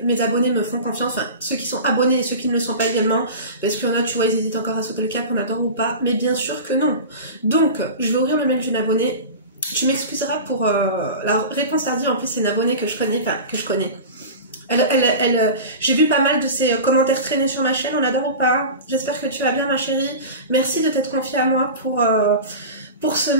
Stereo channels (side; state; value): both; inverted; correlation -0.31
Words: mes abonnés me font confiance, enfin ceux qui sont abonnés et ceux qui ne le sont pas également, parce qu'il y en a, tu vois, ils hésitent encore à sauter le cap, on adore ou pas, mais bien sûr que non. Donc je vais ouvrir le mail d'une abonnée, tu m'excuseras pour la réponse tardive, en plus c'est une abonnée que je connais, j'ai vu pas mal de ses commentaires traîner sur ma chaîne, on adore ou pas, j'espère que tu vas bien ma chérie, merci de t'être confiée à moi pour ce